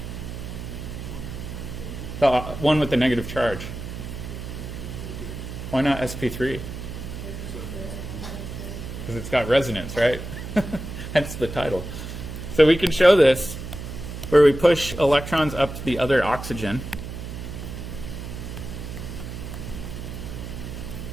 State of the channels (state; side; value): noise; right; hum, 8 dB below the sound